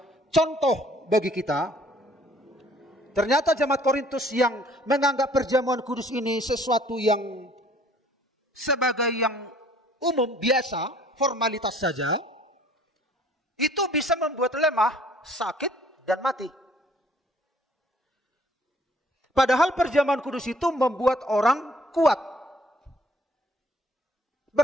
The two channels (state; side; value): normal; both; correlation 0.57